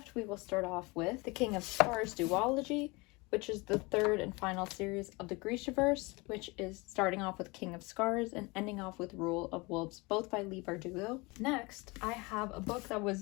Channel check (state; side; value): quieter; right; 25.6 dB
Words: we will start off with The King of Scars duology, which is the 3rd and final series of the Grishaverse, which is starting off with King of Scars and ending off with Rule of Wolves, both by Leigh Bardugo. Next, I have a book that